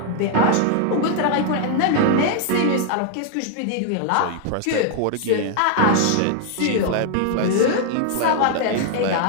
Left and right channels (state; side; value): different; both; correlation 0.00